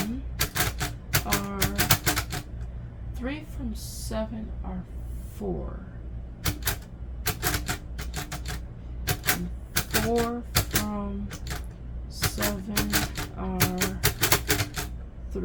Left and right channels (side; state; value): both; identical; correlation 1.00